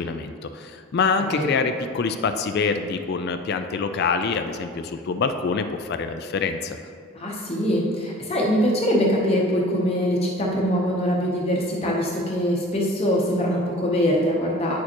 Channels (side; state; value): both; normal; correlation 0.40